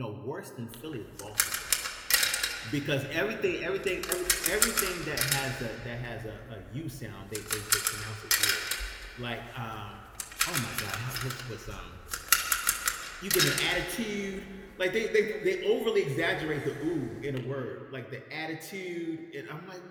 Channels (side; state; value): both; identical; correlation 1.00